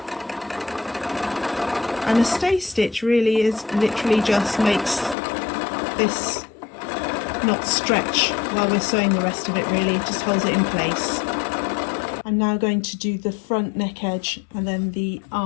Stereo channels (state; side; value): drops out; right; at 5.2 s